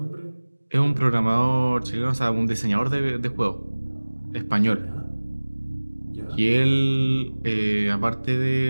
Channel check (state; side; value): inverted; both; correlation -1.00